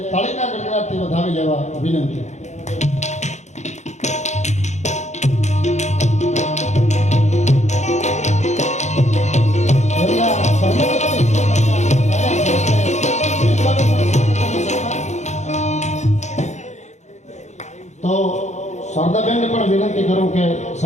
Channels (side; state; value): right; late; 0.34 ms